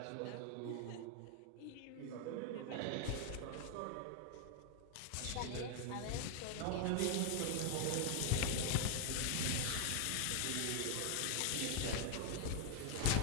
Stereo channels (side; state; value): both; different; correlation 0.00